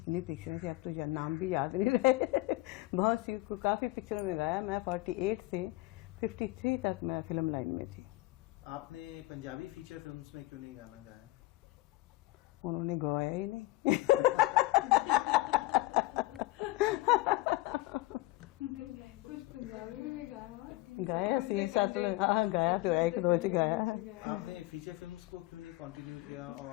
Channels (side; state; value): right; quieter; 19.5 dB